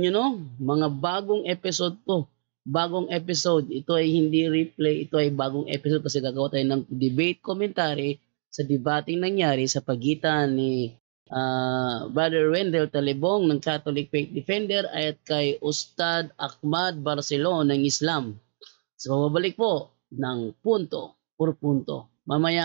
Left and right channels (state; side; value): silent; left; digital silence